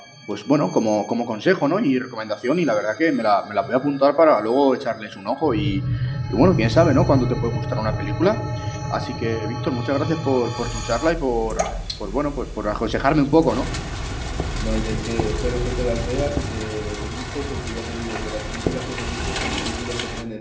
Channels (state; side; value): identical; both; correlation 1.00